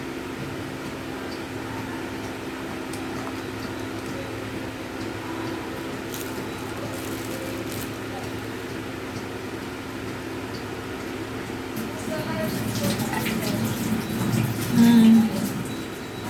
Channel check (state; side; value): identical; both; correlation 1.00